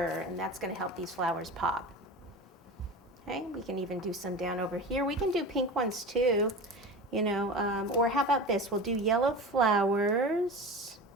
and that's going to help these flowers pop. Okay, we can even do some down over here. We can do pink ones too. You know, or how about this? We'll do yellow flowers,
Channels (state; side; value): normal; both; correlation 0.30